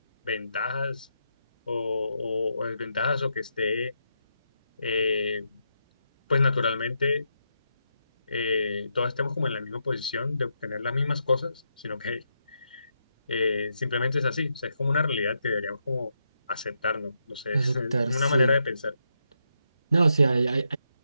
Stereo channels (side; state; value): both; inverted; correlation -0.82